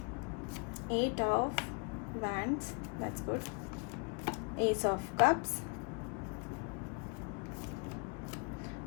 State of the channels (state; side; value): quieter; right; 34.5 dB